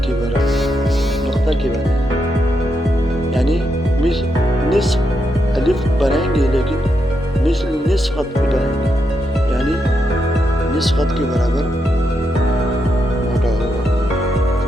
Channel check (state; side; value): normal; both; correlation 0.82